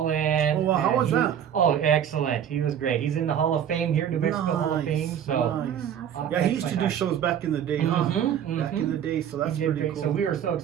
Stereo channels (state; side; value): quieter; left; 9.1 dB